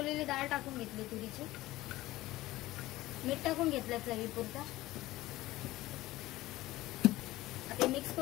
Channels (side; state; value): right; quieter; 17.3 dB